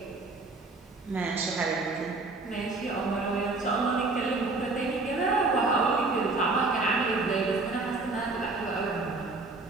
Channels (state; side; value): quieter; left; 3.5 dB